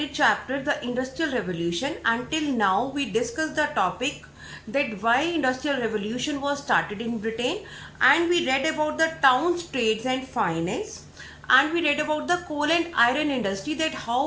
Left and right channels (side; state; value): both; identical; correlation 1.00